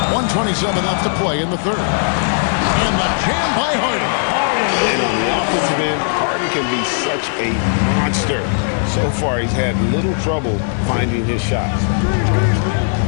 1:27 left to play in the 3rd. And the jam by Harden. And on the offensive end, Harden can be such a monster. So far, he's had little trouble finding his shots.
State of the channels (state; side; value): silent; right; digital silence